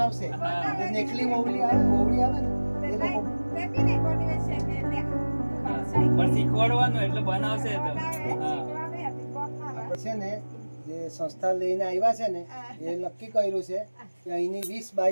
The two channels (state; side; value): inverted; both; correlation -1.00